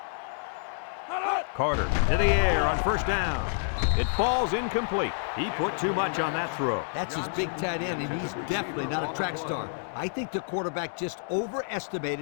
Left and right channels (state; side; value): silent; right; digital silence